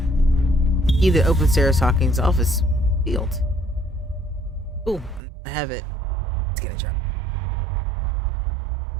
Key that opens Sarah Hawkins' office field. Ooh, I have it. Let's get a job.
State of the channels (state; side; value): drops out; left; at 5.2 s